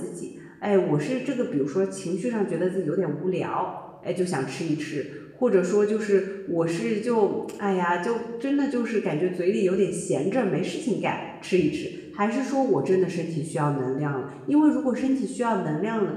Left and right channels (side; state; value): both; identical; correlation 1.00